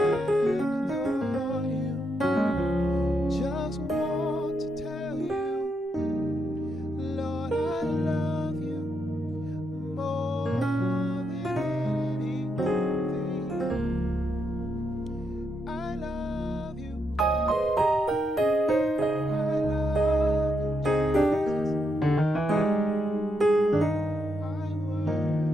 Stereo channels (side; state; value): both; normal; correlation 0.81